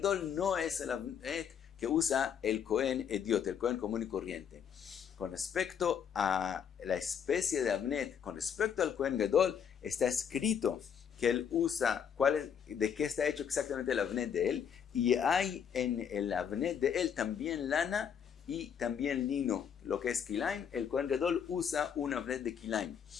no es el avnet que usa el Cohen Idiot, el Cohen común y corriente. Con respecto a la especie de avnet, con respecto al Cohen Gadol, está escrito que él usa, de qué está hecho exactamente el avnet de él, y hay en el avnet de él también lana y también lino, lo que es kilaim. El Cohen Gadol usa un avnet de kilaim.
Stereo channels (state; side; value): quieter; right; 7.9 dB